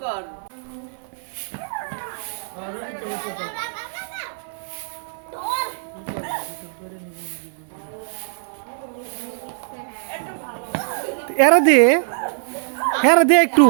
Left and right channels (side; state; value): left; silent; 64 dB below the other